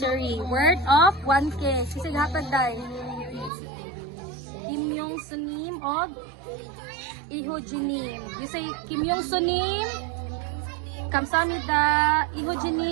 worth of 1K. Sisig hatag day. Kim Yong Sunim of Iho Jinim. You say Kim Yong Sunim, kamsamida, Iho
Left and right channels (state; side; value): drops out; left; at 3.5 s